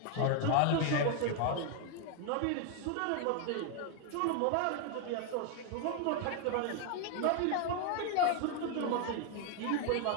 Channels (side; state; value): both; different; correlation 0.01